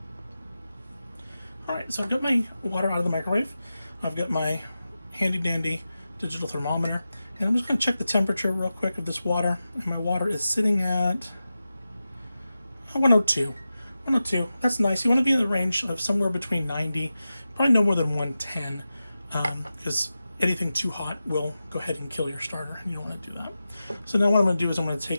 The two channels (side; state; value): both; inverted; correlation -0.93